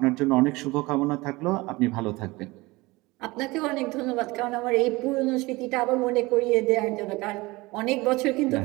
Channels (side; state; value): left; quieter; 22.0 dB